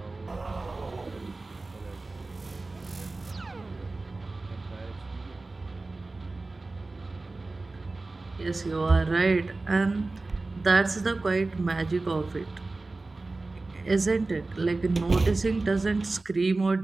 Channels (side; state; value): left; quieter; 3.4 dB